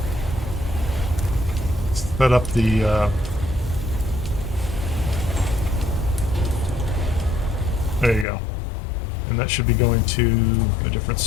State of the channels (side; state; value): right; drops out; at 8.2 s